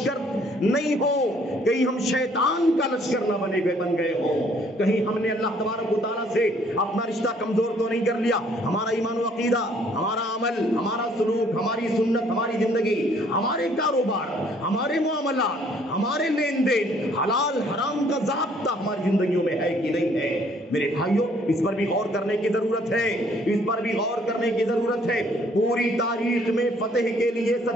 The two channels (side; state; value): both; normal; correlation 0.62